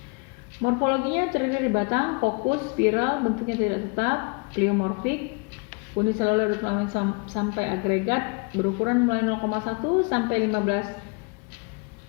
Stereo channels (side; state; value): right; quieter; 32.5 dB